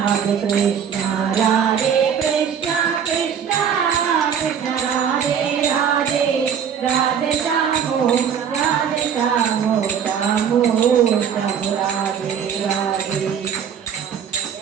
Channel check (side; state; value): left; quieter; 7.8 dB